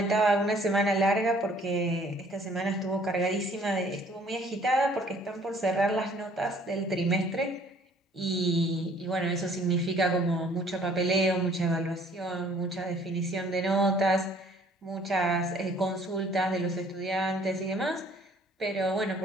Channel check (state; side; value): normal; both; correlation 0.58